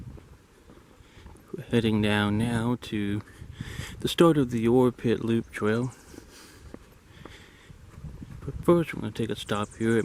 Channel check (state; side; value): identical; both; correlation 1.00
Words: Heading down now to the start of the Ore Pit Loop Trail. But first we're going to take a stop here at